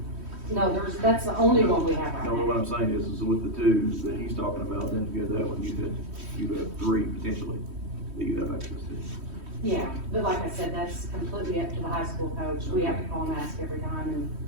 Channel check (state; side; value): late; left; 3.1 ms